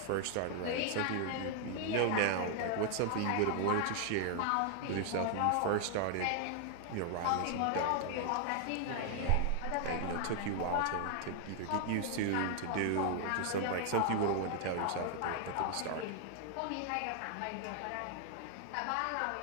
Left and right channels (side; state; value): both; different; correlation 0.00